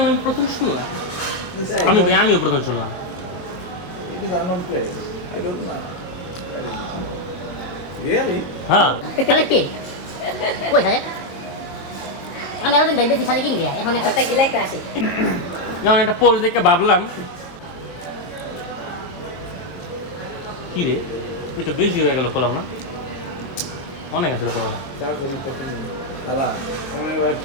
আমি প্রথম শুনি আমিও প্রথম শুনলাম It is unknown place. I don't know. Where is it? Really হ্যাঁ কি কই সালে আমি এতদিন দেখতেছি সালে কিনবে এখন একটা গিলা একটা আসে যেমন একটা পোস্ট দেখে ভাবলাম কি রে এটা বেশি হয়ে গেল করলাম না অনেক আছে করলাম 4 জনের প্রথম জন খালা সময় ওরা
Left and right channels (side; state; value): right; late; 22 ms